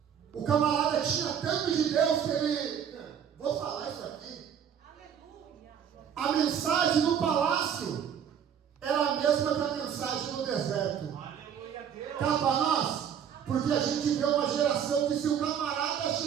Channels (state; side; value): quieter; left; 8.4 dB